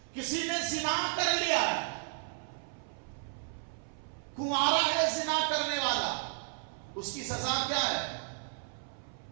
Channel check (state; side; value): silent; left; 55 dB below the other